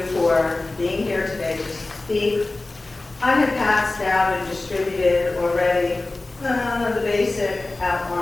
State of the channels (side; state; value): right; quieter; 3.1 dB